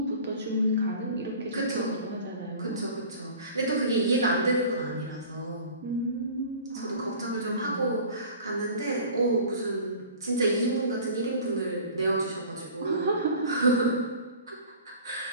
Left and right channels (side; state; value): both; inverted; correlation -0.43